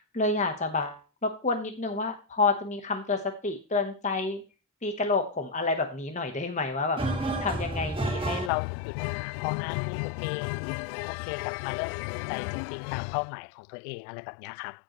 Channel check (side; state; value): right; drops out; at 8.5 s